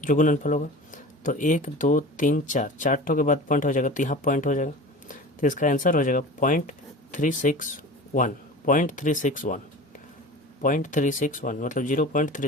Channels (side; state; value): both; normal; correlation 0.36